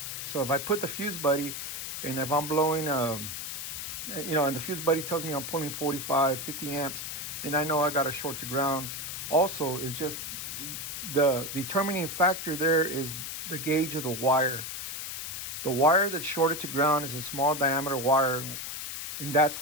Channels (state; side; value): noise; left; hiss, 6 dB below the sound